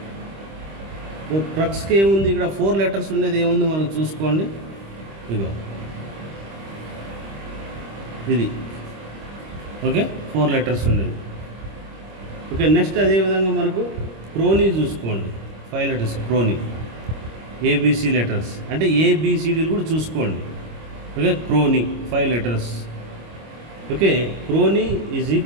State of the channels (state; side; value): late; left; 25 ms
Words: ప్రక్స్కి ఏముంది ఇక్కడ? 4 లెటర్స్ ఉండేది ఏముంది మనం చూసుకోండి. ఇదిగో ఇది. ఓకే, 4 లెటర్స్ ఉండేది. ఓకే, నెక్స్ట్ అదేవిధంగా మనకు క్రోనీ చూసుకోండి. 5 లెటర్స్ క్రోనీ. ఏబిసి లెటర్స్ అంటే ఏబిసిడీలు కూడా చూసుకోండి. Okay, crony 5 letters. Okay, crony is